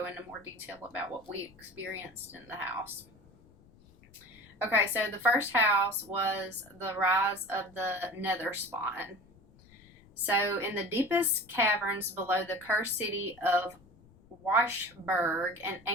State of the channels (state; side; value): noise; left; rumble, 26 dB below the sound